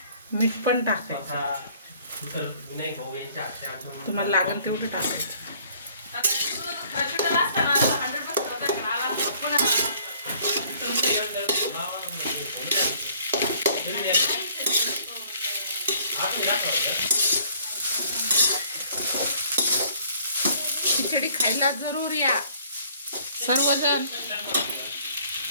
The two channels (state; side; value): inverted; both; correlation -0.58